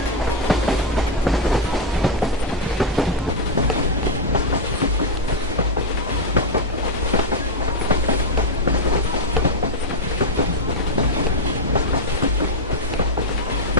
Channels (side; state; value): both; normal; correlation 0.02